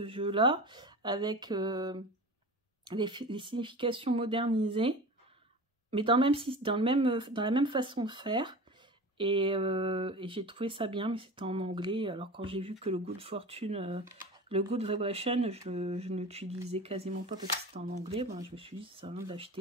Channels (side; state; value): both; normal; correlation 0.33